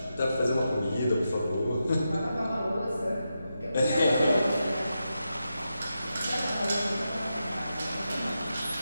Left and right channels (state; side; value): inverted; both; correlation -0.88